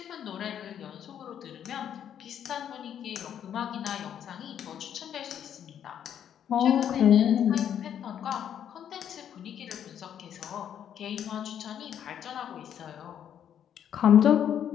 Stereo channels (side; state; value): right; quieter; 9.4 dB